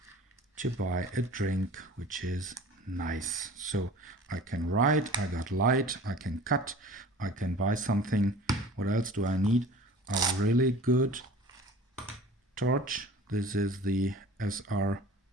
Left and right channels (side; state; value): both; normal; correlation 0.43